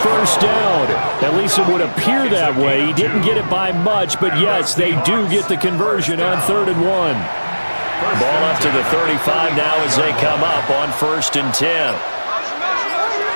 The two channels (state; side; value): inverted; both; correlation -1.00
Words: down. At least it would appear that way. He didn't get it by much, but yes, they do get the conversion on 3rd and 1. Ball up to the 35 now as they come up on 1st and 10.